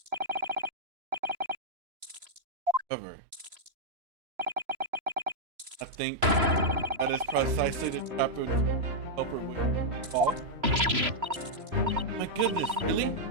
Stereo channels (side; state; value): left; late; 3.0 ms